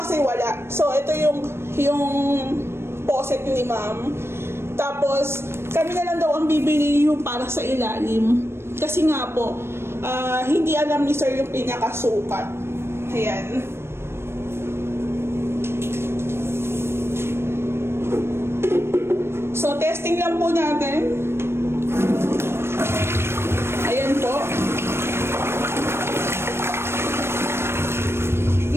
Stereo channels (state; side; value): late; left; 0.12 ms